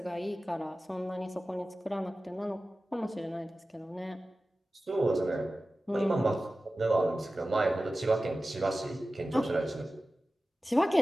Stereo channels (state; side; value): normal; both; correlation 0.95